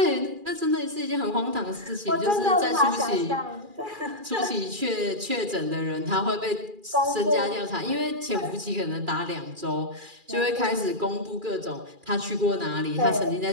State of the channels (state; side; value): late; left; 2.4 ms